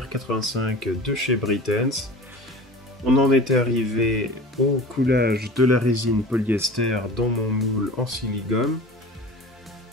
85 de chez Britains. On en était arrivé au coulage de la résine polyester dans mon moule en silicone.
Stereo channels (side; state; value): both; normal; correlation 0.38